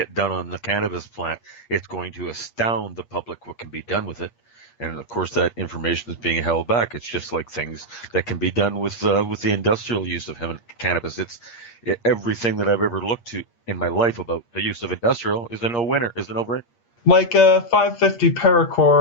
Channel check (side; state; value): right; late; 8.5 ms